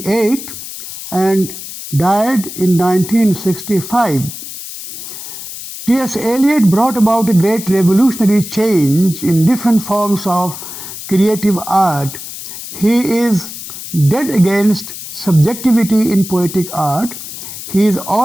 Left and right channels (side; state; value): left; noise; hiss, 11 dB below the sound